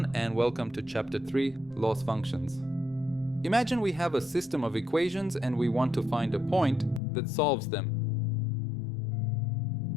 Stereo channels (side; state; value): right; drops out; at 7.0 s